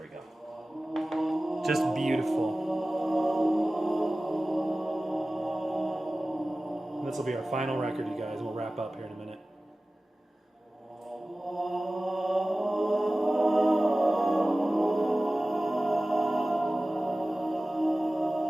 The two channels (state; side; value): normal; both; correlation 0.97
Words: we go. Just beautiful. This will be our final record, you guys. We'll wrap up here in a minute.